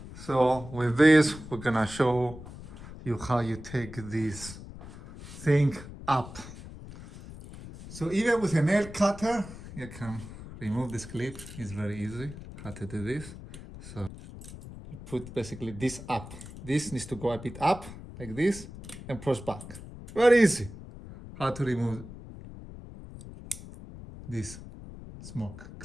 So with this, we're gonna show you how you take this thing up. So even with a nail cutter, you can remove this clip. It's very easy how to do this. So you put basically this up. This needs to go a bit up like this and push back. Very easy how to remove this smoke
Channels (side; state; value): left; noise; rumble, 14 dB below the sound